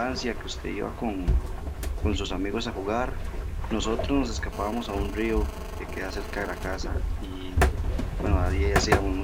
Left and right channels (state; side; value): identical; both; correlation 1.00